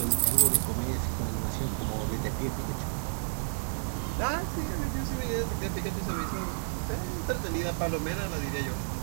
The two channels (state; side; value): silent; left; digital silence